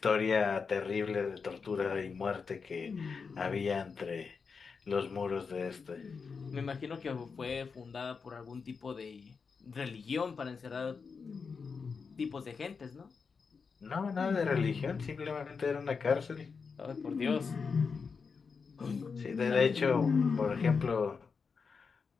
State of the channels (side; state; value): right; quieter; 5.3 dB